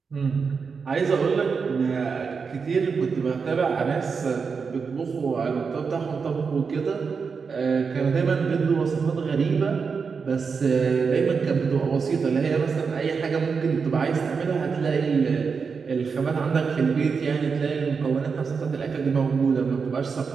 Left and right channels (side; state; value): left; quieter; 5.5 dB